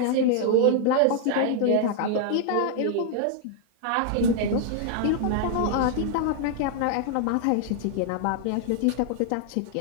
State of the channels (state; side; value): different; both; correlation 0.00